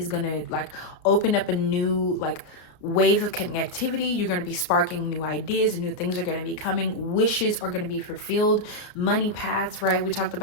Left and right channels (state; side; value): late; right; 33 ms